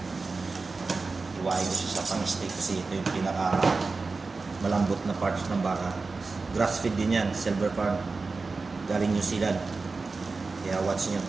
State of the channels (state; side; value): quieter; left; 4.0 dB